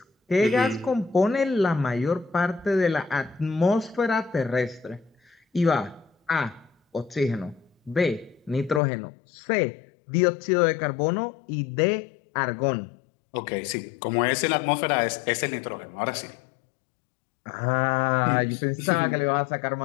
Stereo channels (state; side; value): drops out; right; at 8.8 s